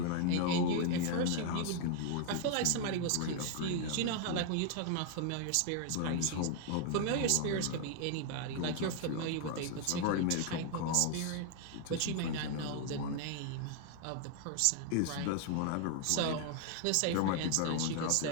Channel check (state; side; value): different; both; correlation 0.00